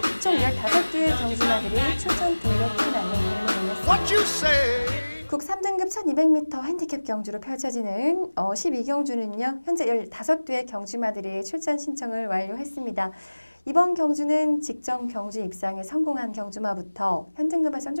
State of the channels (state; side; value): inverted; both; correlation -1.00